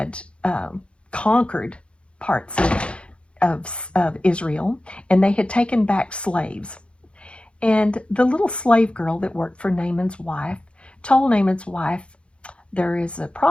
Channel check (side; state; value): right; late; 0.058 ms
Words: conquered parts of Israel, and they had taken back slaves. And the little slave girl that worked for Naaman's wife told Naaman's wife, there is a